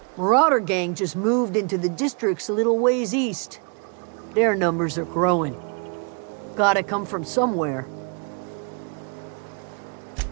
Marauder gang just moved into the districts a little ways east. Their numbers are growing. Gotta come from somewhere.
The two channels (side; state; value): left; quieter; 39.4 dB